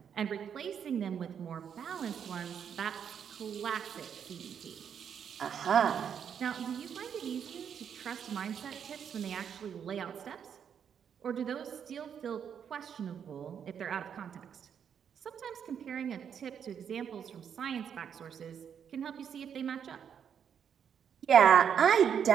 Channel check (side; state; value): left; quieter; 8.0 dB